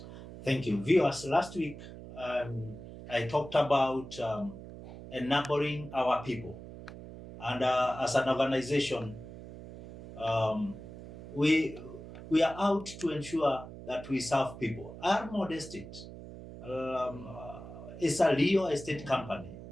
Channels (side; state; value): right; noise; hum, 13 dB below the sound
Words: Thank you. Viewers, last week I talked about enabling our people. And as an organization, we are out to ensure that we serve people. Almond Estate is a real estate company.